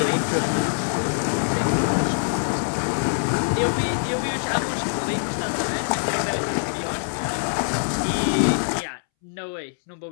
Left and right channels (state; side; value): silent; right; 63 dB below the other